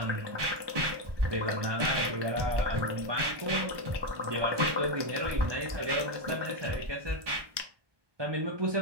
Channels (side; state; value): left; late; 1.2 ms